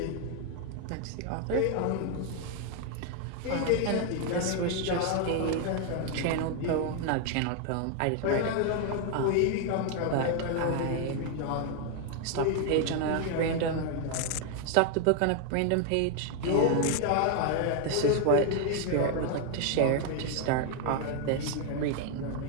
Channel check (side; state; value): both; different; correlation 0.00